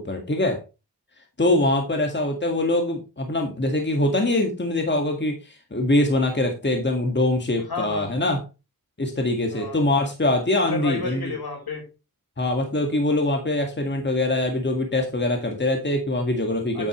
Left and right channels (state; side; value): normal; both; correlation 0.21